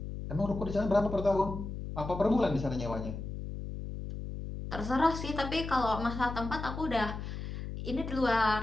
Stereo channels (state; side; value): noise; left; hum, 7 dB below the sound